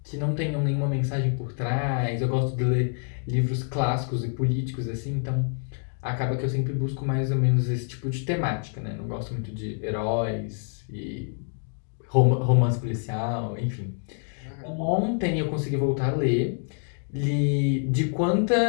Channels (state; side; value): silent; right; 60 dB below the other